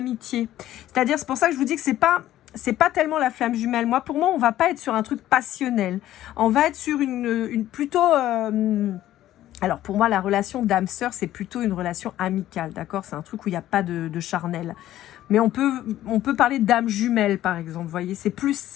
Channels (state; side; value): quieter; right; 13.5 dB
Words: C'est-à-dire, c'est pour ça que je vous dis que c'est pas tellement la flamme jumelle. Pour moi, on va pas être sur un truc passionnel. On va être sur une plutôt Alors pour moi, la relation d'âme-sœur, c'est plutôt une relation amicale, d'accord? C'est un truc où il n'y a pas de charnel. Mais on peut parler d'âme jumelle, par exemple, vous voyez? C'est plus